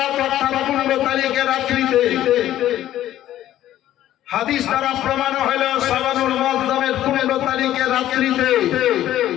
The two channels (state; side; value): quieter; right; 12.9 dB